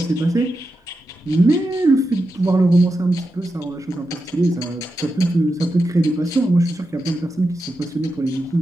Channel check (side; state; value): both; normal; correlation 0.88